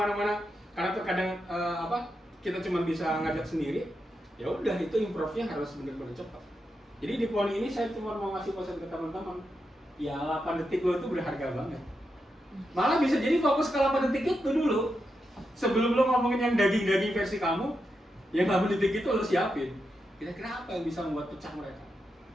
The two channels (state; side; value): normal; both; correlation 0.86